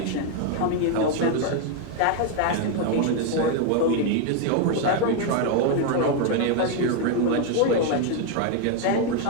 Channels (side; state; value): both; different; correlation 0.01